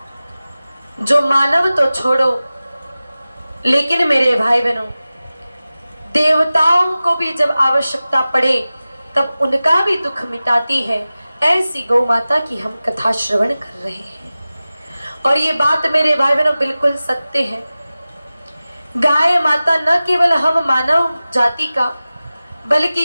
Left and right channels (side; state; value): both; inverted; correlation -0.96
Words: जो मानव तो छोड़ो लेकिन मेरे भाई बहनों देवताओं को भी जब आवश्यकता पड़े तब उनका भी दुख मिटाती है, ऐसी गौ माता की हम कथा श्रवण कर रहे हैं। और ये बात मेरे भाई बहनों बिल्कुल सत्य है। गाय माता न केवल हम मानव जाति का बल्कि